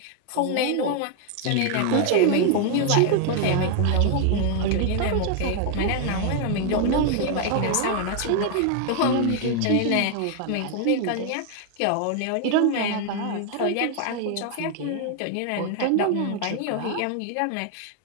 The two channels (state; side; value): different; both; correlation 0.00